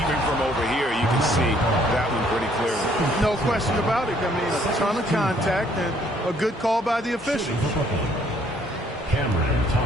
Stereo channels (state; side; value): normal; both; correlation 0.64